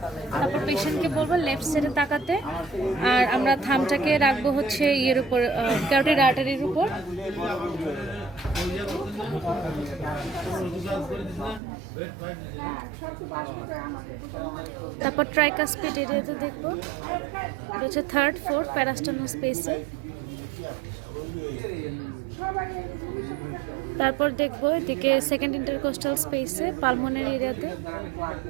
তারপর পেশেন্টকে বলবো লেফট সাইডে তাকাতে, আর আমরা থামটাকে রাখবো হচ্ছে ইয়ের উপর, ক্যারোটিড আর্টারির উপর। তারপর ট্রাইকাসপিড এরিয়াতে দেখবো, এটা হচ্ছে 3rd 4th প্যারাস্টার্নাল স্পেসে। তারপর দেখবো এদিকে 2nd ইন্টারকোস্টাল স্পেসে পালমোনারি এরিয়াতে।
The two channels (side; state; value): left; drops out; at 11.6 s